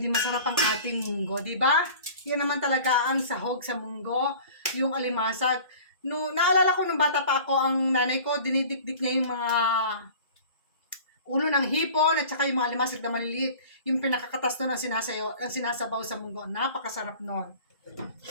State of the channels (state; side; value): inverted; both; correlation -0.43